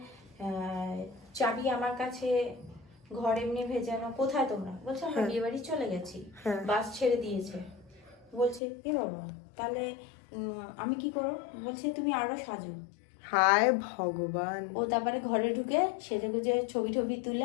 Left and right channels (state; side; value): drops out; right; at 8.6 s